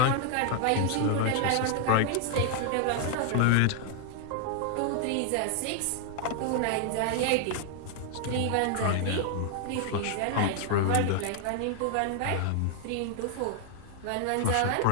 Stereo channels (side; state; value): both; different; correlation 0.00